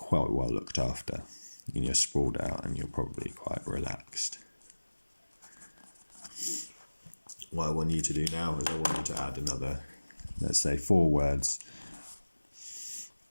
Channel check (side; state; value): both; inverted; correlation -1.00